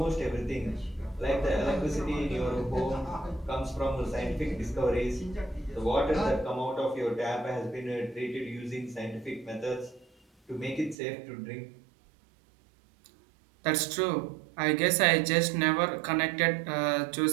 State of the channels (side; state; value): left; drops out; at 11.0 s